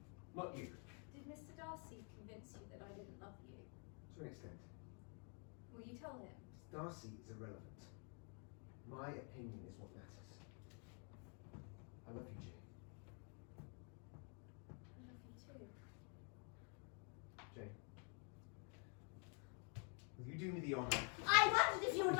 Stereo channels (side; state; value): right; quieter; 39.3 dB